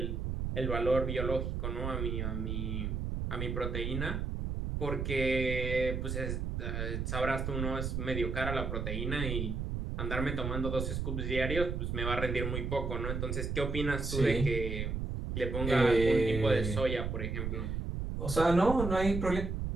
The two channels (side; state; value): right; noise; rumble, 2 dB below the sound